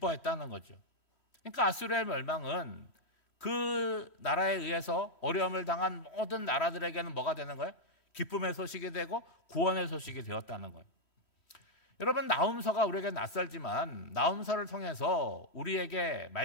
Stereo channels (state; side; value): late; right; 3.1 ms